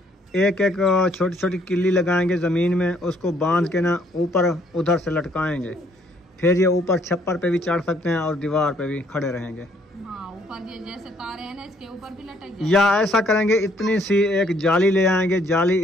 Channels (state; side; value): normal; both; correlation 0.66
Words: एक एक छोटी छोटी किल्ली लगाएंगे ज़मीन में, उसको बांध के ना ऊपर उधर से लटकाएंगे। फिर ये ऊपर छप्पर पे भी चढ़ सकते हैं और दीवार पे भी खड़े रहेंगे। हाँ, ऊपर ये जैसे तारे हैं ना इसके ऊपर भी लटक जाए। या ऐसा करेंगे, इतनी सी एक जाली ले आएंगे, जाली